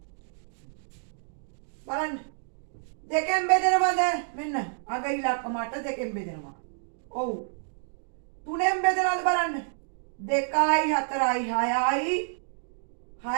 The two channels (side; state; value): left; silent; digital silence